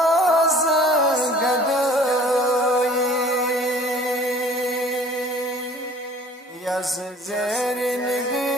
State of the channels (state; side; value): normal; both; correlation 0.50